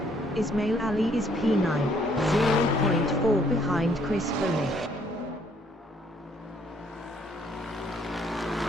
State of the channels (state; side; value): normal; both; correlation 0.66